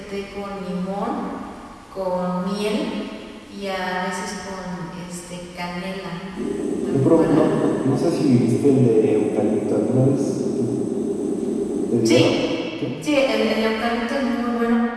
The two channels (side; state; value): both; identical; correlation 1.00